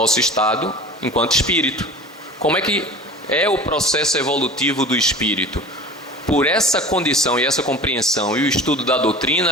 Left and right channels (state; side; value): normal; both; correlation 0.38